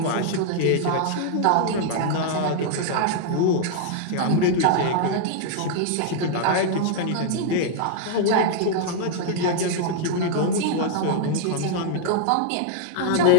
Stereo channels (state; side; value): different; both; correlation 0.00